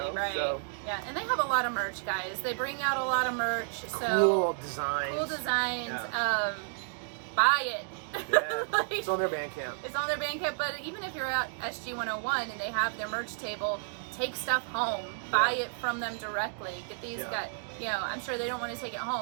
So, yeah, and they have a lot of merch, guys. They bring out a lot of merch. So cool designs. Yeah. Buy it. Yeah. It's on their Bandcamp. It's on their Bandcamp. But even if you're at SG 101 and they have their merch table, take stuff home. Buy it from them directly. Get these guys. I'm sure they don't want to take it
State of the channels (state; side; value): silent; left; digital silence